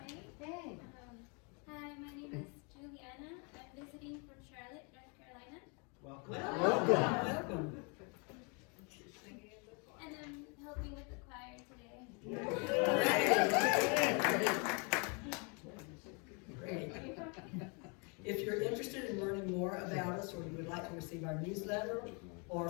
Hey. Hi, my name is Juliana. I'm visiting from Charlotte, North Carolina. Welcome. And I'm helping with the choir today. Great. If you're interested in learning more about us, or you would like to receive our newsletter or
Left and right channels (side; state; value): right; quieter; 34.2 dB